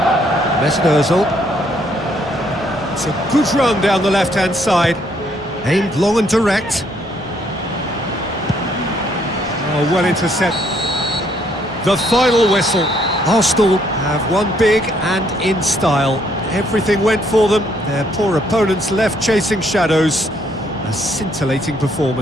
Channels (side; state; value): both; normal; correlation 0.68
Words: Mesut Ozil. It's a good run down the left-hand side. Aimed long and direct. Oh, well intercept. The final whistle. Arsenal have won big and in style. Everything went for them. Their poor opponents left chasing shadows. A scintillating